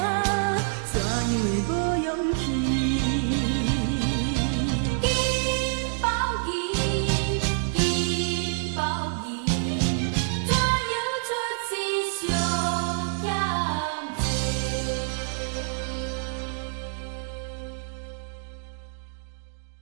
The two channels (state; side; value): silent; left; digital silence